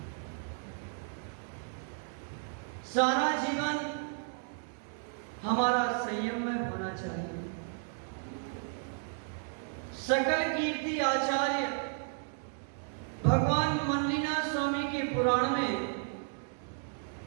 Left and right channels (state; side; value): silent; left; 55 dB below the other